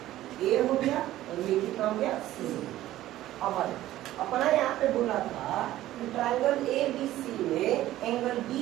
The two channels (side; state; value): left; quieter; 14.5 dB